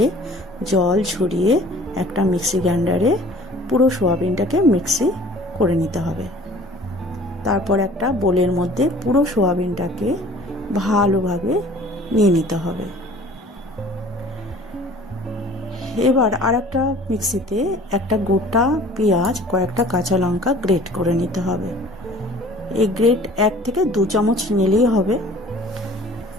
জল ঝরিয়ে একটা মিক্সি গ্রাইন্ডারে পুরো সোয়াবিনটাকে মিক্সি করে নিতে হবে। তারপর একটা বোলের মধ্যে পুরো সোয়াবিনটাকে ভালোভাবে নিয়ে নিতে হবে। এবার আর একটা মিক্সিতে একটা গোটা পেঁয়াজ, কয়েকটা কাঁচা লঙ্কা গ্রেট করে নিতে হবে। এই গ্রেট 1 থেকে 2 চামচ নিলেই হবে।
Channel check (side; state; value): both; normal; correlation 0.49